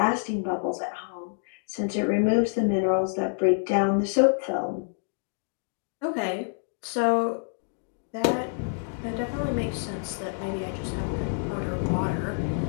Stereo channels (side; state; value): right; silent; digital silence